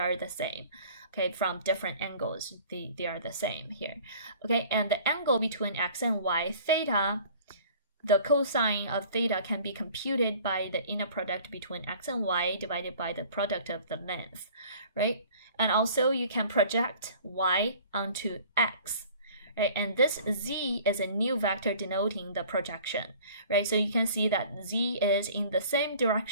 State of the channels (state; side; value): inverted; both; correlation -0.49